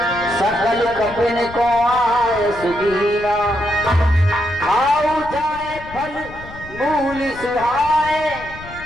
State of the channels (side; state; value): left; noise; rumble, 16 dB below the sound